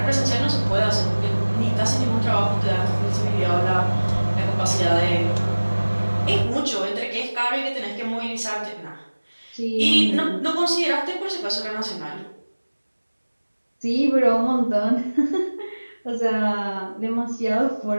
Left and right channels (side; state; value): both; inverted; correlation -1.00